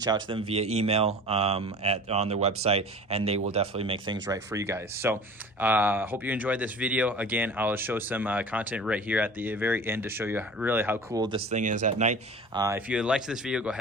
out to them via email on their website, and they will definitely make things right for you guys. So hope you enjoyed this video. Again, I'll show some content right here at the very end to show you really how cool this thing is at night. If you liked this video, go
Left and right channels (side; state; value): both; normal; correlation 0.39